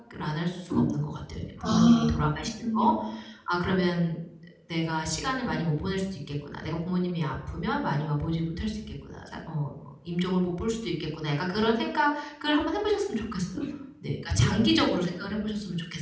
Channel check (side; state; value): both; identical; correlation 1.00